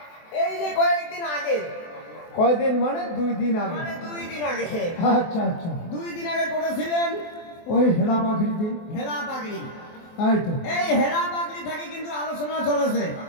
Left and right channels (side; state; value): right; late; 24 ms